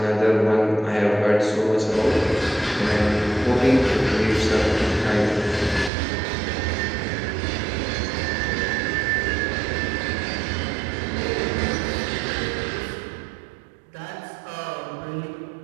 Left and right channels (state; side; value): drops out; left; at 5.9 s